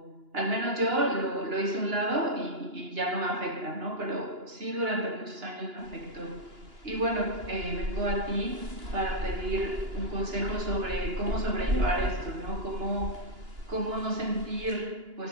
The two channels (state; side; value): late; left; 2.9 ms